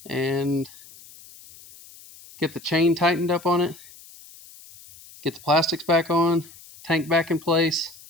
and get the chain tightened up on it, get the plastics back on, tank back in place.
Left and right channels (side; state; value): left; noise; hiss, 21 dB below the sound